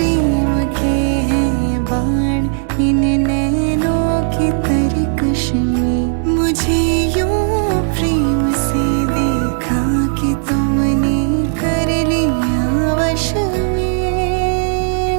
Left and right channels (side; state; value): left; silent; digital silence